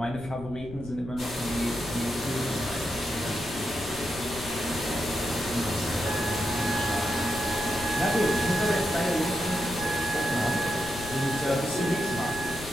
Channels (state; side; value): noise; left; rumble, 13 dB below the sound